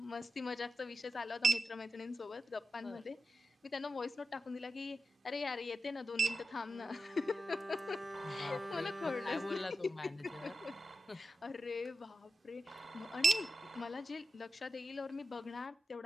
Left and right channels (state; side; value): normal; both; correlation 0.89